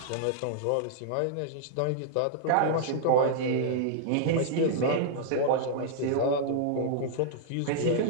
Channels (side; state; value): both; different; correlation -0.01